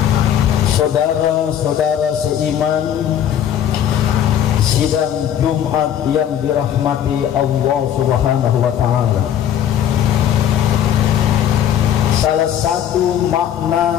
Saudara-saudara seiman, sidang Jumat yang dirahmati Allah Subhanahu wa Ta'ala, salah satu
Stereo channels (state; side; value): quieter; right; 9.9 dB